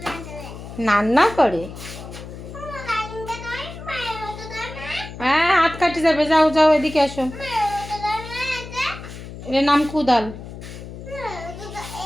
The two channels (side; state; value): left; noise; hum, 12 dB below the sound